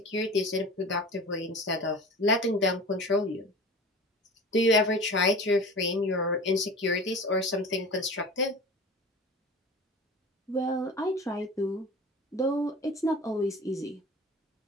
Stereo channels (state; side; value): normal; both; correlation 0.37